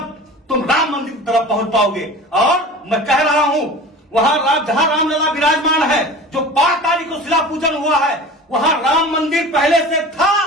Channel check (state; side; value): normal; both; correlation 0.37